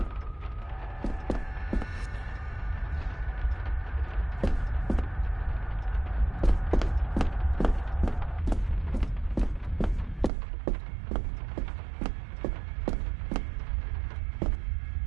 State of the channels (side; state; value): left; drops out; at 10.3 s